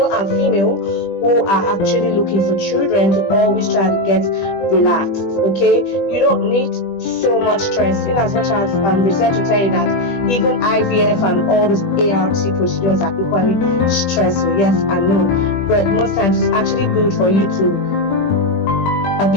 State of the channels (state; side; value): late; right; 20 ms